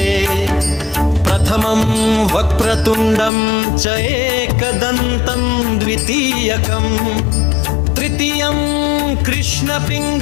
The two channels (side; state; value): right; drops out; at 3.3 s